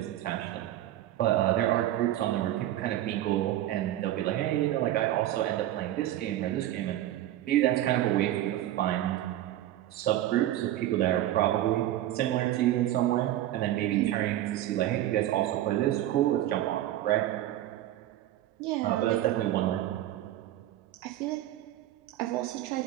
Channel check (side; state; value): left; quieter; 13.6 dB